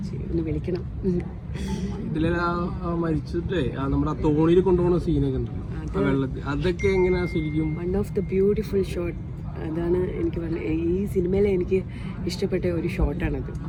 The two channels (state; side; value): identical; both; correlation 1.00